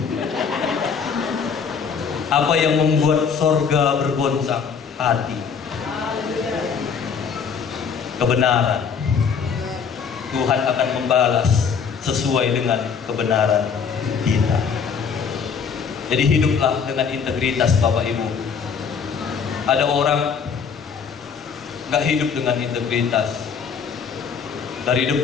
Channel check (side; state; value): right; quieter; 6.3 dB